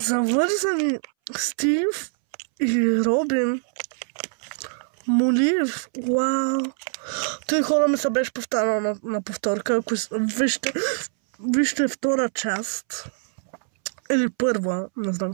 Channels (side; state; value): left; silent; 63 dB below the other